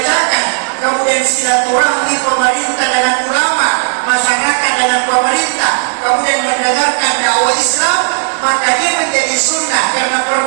kemudian silaturahmi kemudian mendengarkan dakwah Islam, maka dia menjadi sunnah karena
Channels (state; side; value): silent; left; digital silence